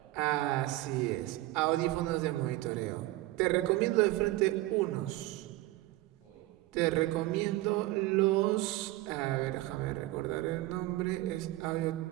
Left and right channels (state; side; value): quieter; left; 17.8 dB